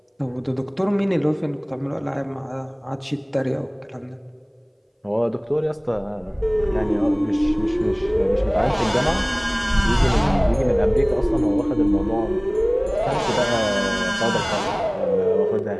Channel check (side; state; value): both; identical; correlation 1.00